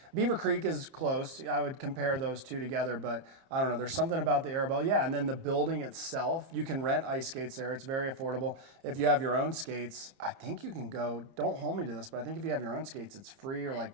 Beaver Creek is close. I would compare those two together, but I don't know. There's something about the Arabelle. Yeah, and then the building itself, you can rent ice skates there. It's very affordable. If you have your own skates, I think you can go, don't hold me to this, but I think if you have your own skates, it's free or like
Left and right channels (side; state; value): left; late; 30 ms